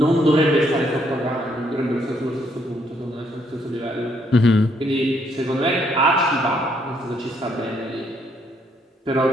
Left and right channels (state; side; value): normal; both; correlation 0.71